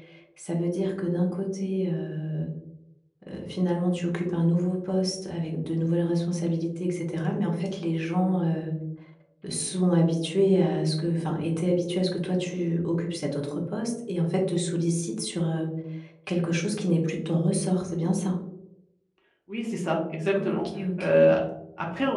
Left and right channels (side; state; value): both; identical; correlation 1.00